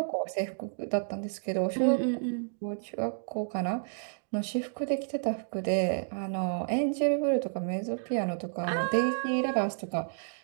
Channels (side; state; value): left; silent; digital silence